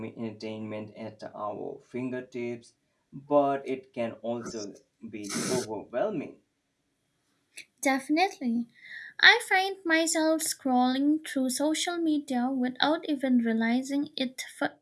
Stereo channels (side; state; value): both; identical; correlation 1.00